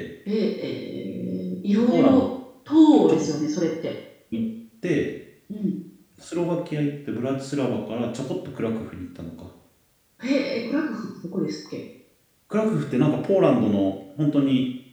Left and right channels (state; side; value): identical; both; correlation 1.00